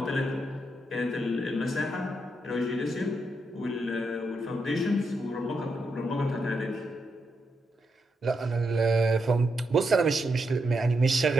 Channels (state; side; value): normal; both; correlation 0.82